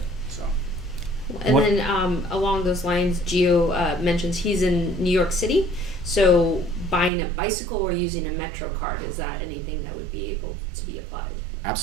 So. And then along those lines, Gio mentions he's in New York City, so buying a bicycle or using a Metro card, is that anything that would be able to be applied?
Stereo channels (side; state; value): left; drops out; at 7.1 s